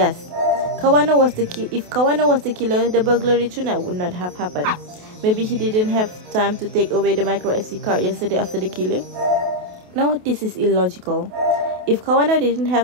if Kawano was the killer, the burglary tonight would not have happened. Maybe he didn't have time to take away the micro SD card yesterday after the killing? No, this is illogical. If Kawano didn't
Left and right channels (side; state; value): left; late; 28 ms